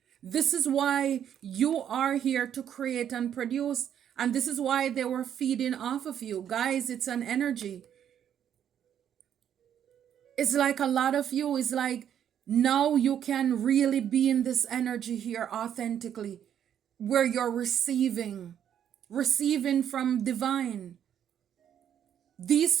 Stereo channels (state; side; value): quieter; left; 9.5 dB